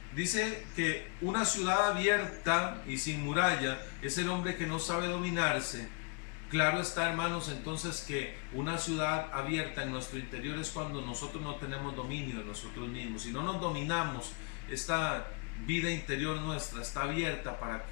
Dice que una ciudad abierta y sin muralla es el hombre que no sabe dominarse. Claro está, hermanos, entonces que una ciudad abierta en nuestro interior es cuando nosotros no tenemos dominio de nosotros mismos. Si no nos dominamos, esta vida interior nuestra está abierta para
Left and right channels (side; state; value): right; quieter; 33.8 dB